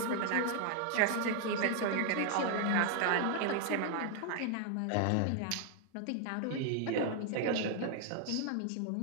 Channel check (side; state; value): both; different; correlation 0.00